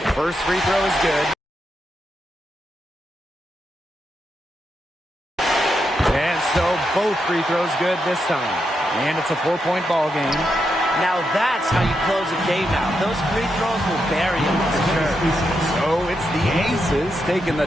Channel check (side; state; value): both; normal; correlation 0.83